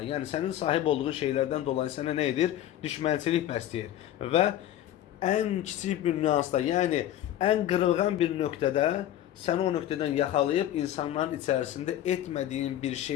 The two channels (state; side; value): quieter; right; 12.2 dB